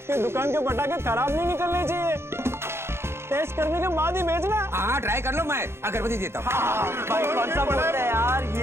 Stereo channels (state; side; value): late; left; 0.12 ms